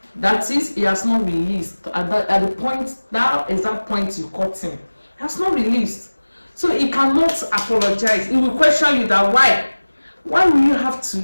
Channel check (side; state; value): both; inverted; correlation -1.00